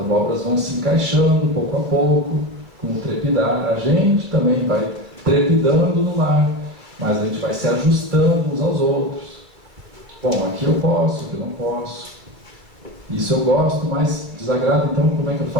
vão se encaixando pouco a pouco, com o trepidar. A gente também vai trepidando no lar, mas a gente vai se ajustando uns aos outros. Bom, aqui eu posso, aqui eu não posso. Isso eu gosto, mas desagrada, então como é que eu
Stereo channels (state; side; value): late; left; 2.3 ms